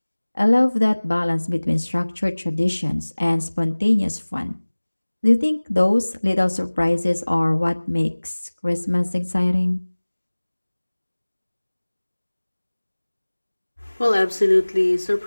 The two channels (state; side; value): inverted; both; correlation -1.00